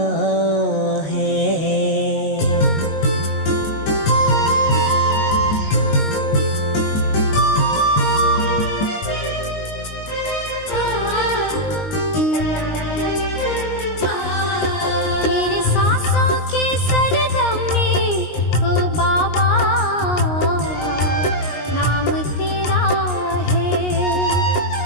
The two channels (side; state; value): right; late; 19 ms